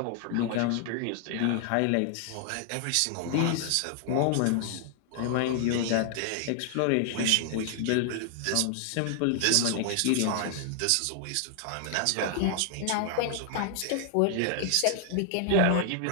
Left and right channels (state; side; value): different; both; correlation 0.00